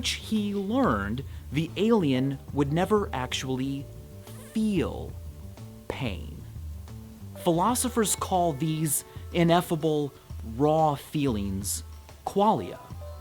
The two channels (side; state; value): both; identical; correlation 1.00